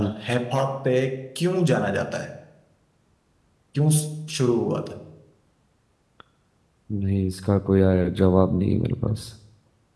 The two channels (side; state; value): both; identical; correlation 1.00